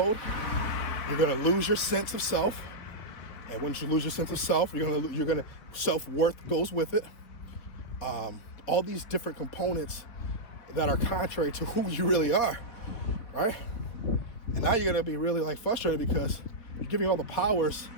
You're going to lose your sense of self. And once you lose your sense of self, you're going to self-worth goes with it. All these different components that are contrary to who you really are, right? And now you're going to be really like frustrated because you're giving all the powers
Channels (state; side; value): late; right; 4.0 ms